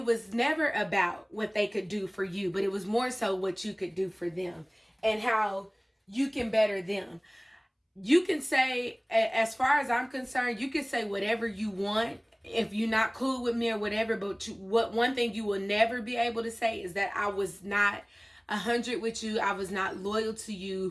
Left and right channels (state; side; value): identical; both; correlation 1.00